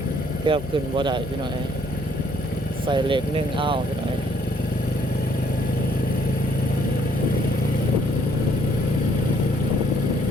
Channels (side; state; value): left; noise; hum, 13 dB below the sound